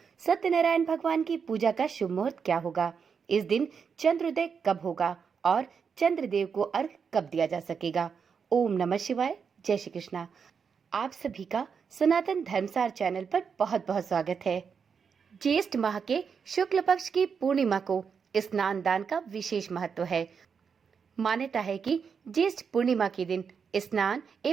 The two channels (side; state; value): left; quieter; 6.3 dB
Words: सत्यनारायण भगवान की पूजा का शुभ मुहूर्त क्या होगा, इस दिन चंद्रोदय कब होगा और चंद्रदेव को अर्घ कब दिया जा सकेगा। ओम नमः शिवाय, जय श्री कृष्णा। आप सभी का सनातन धर्मसार चैनल पर बहुत बहुत स्वागत है। ज्येष्ठ माह के शुक्ल पक्ष की पूर्णिमा को स्नान दान का विशेष महत्व है। मान्यता है कि ज्येष्ठ पूर्णिमा के दिन स्नान